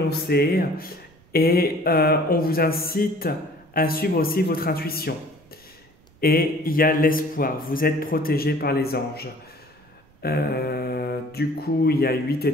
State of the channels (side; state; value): right; noise; rumble, 30 dB below the sound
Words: et on vous incite à suivre aussi votre intuition. Et il y a l'espoir, vous êtes protégé par les anges. Du coup, il y a 8